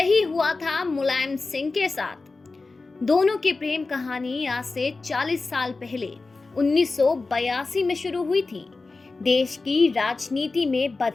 हुआ था मुलायम सिंह के साथ। दोनों की प्रेम कहानी आज से 40 साल पहले 1982 में शुरू हुई थी। देश की राजनीति में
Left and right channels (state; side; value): quieter; right; 3.7 dB